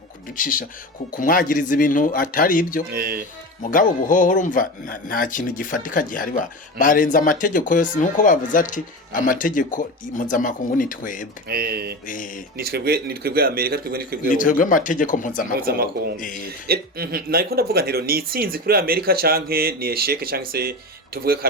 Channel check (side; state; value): both; normal; correlation 0.26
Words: kuducisha kumwagiriza ibintu atari ibyo mugabo buhoho urumva nta kintu gifatika gihari barenza amategeko yose nuko bavuze ati amategeko mpuzamakungu ni twebwe ni twebwe Amerika ni twebwe amategeko mpuzamakungu nariko ndavuga ntero ni itsinzi kuri Amerika canke ni esheke canke se tuvuge